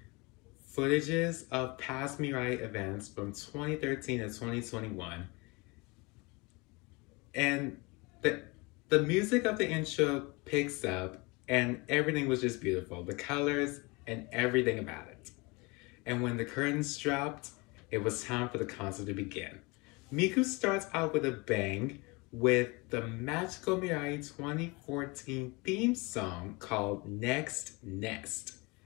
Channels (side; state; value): right; quieter; 26.6 dB